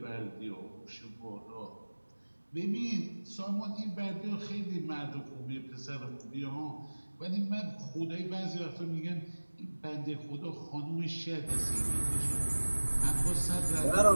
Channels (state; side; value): inverted; both; correlation -1.00